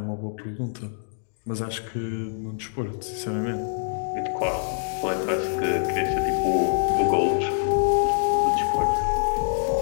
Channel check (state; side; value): silent; right; digital silence